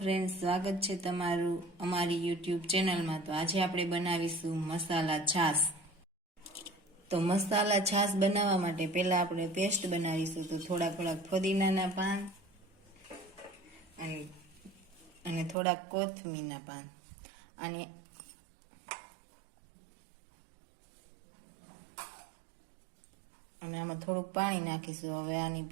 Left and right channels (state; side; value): drops out; left; at 15.6 s